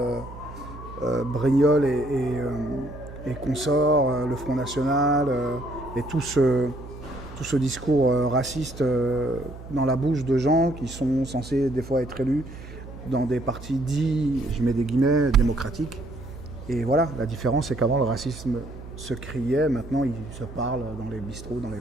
et consorts, le Front National et tout ce discours raciste dans la bouche de gens qui sont censés des fois être élus dans des partis dits, je mets des guillemets, démocratiques. Et voilà, la différence c'est qu'avant le racisme se criait, maintenant il se parle dans les bistrots, dans les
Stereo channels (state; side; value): noise; right; hum, 14 dB below the sound